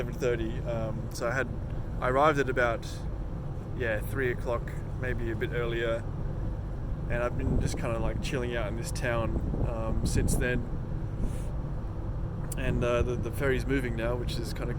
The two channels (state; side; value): identical; both; correlation 1.00